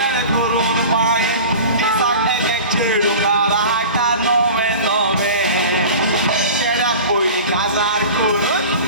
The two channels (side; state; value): both; inverted; correlation -0.36